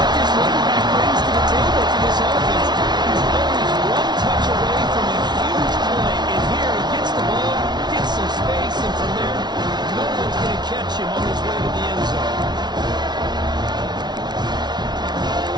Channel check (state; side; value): late; left; 0.20 ms